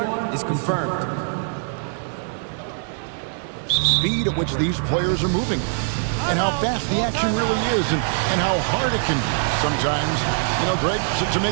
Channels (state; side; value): silent; left; digital silence